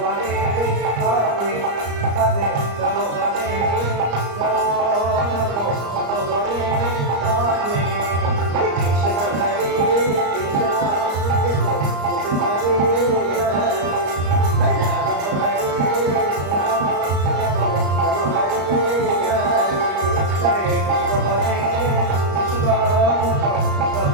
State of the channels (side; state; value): left; late; 34 ms